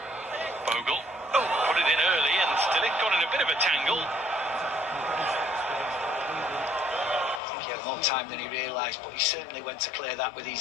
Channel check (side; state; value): right; drops out; at 7.4 s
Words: Bogle. Oh, put it in early, and De Ligt got in a bit of a tangle. He had more time than he realised, but he certainly went to clear that with